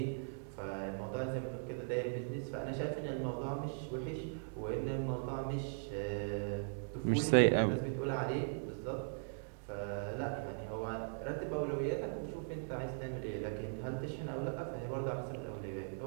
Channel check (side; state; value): left; silent; digital silence